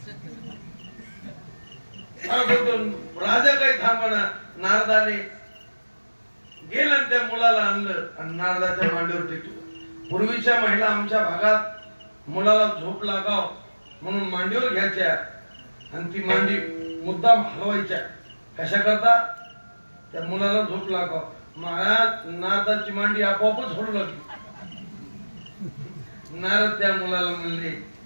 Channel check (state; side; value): inverted; both; correlation -1.00